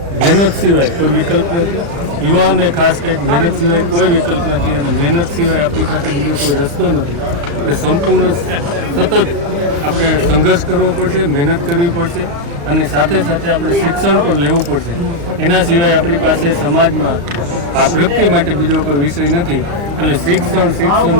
મહેનત સિવાય કોઈ વિકલ્પ નથી. યુવાઓને ખાસ કંઈક મહેનત સિવાય કોઈ વિકલ્પ નથી અને મહેનત સિવાય આપણી પાસે બીજો કોઈ રસ્તો નથી. એટલે સંપૂર્ણ સતત આપણે સંઘર્ષ કરવો પડશે, મહેનત કરવી પડશે અને સાથે સાથે આપણે શિક્ષણ પણ લેવું પડશે. એના સિવાય આપણી પાસે સમાજમાં આ પ્રગતિ માટે બીજો કોઈ વિષય નથી. એટલે શિક્ષણ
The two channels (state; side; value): late; left; 35 ms